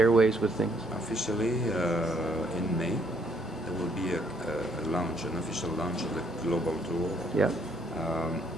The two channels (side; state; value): both; normal; correlation 0.67